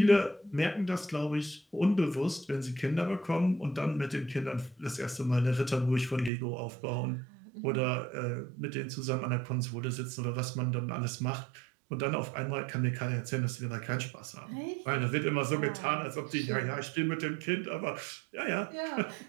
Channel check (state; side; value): drops out; left; at 6.3 s